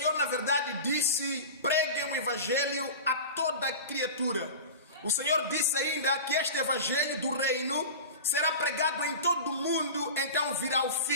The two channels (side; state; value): both; inverted; correlation -0.31